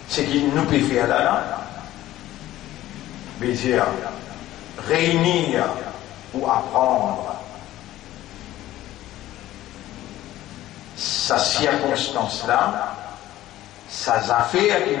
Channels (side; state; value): right; quieter; 14.7 dB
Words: Ce qu'il nous peut faire là, c'est dire réunir ou apprendre sa circonstance là, sa affaire qu'il